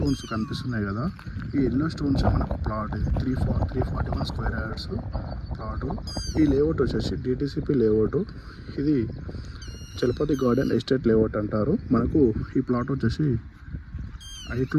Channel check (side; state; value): both; identical; correlation 1.00